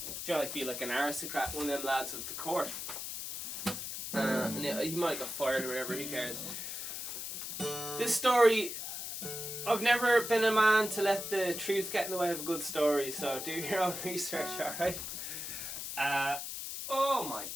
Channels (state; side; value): noise; left; hiss, 6 dB below the sound